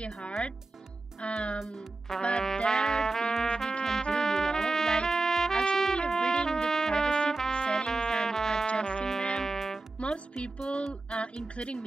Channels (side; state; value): left; quieter; 3.3 dB